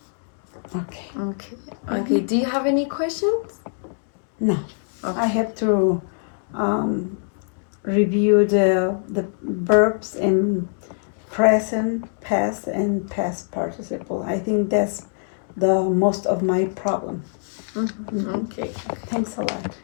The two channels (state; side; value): silent; right; 63 dB below the other